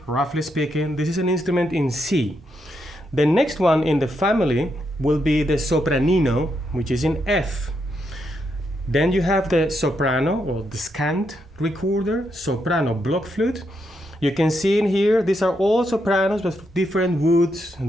roughly speaking. This is an instrument in C. The next one in the family will be the Sopranino, which is in F. Then you have the soprano, or the scant recorder, soprano blockflute. You can see in here, these are all sopranos with different woods,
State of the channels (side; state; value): both; normal; correlation 0.80